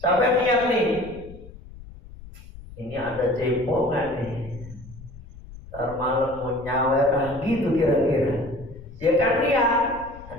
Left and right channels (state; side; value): noise; left; rumble, 17 dB below the sound